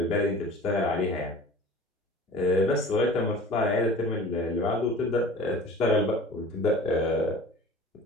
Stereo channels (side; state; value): both; normal; correlation 0.42